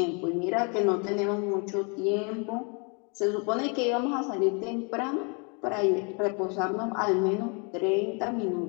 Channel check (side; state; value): right; quieter; 34.0 dB